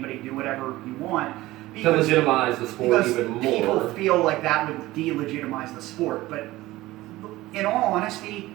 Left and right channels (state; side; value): quieter; left; 17.8 dB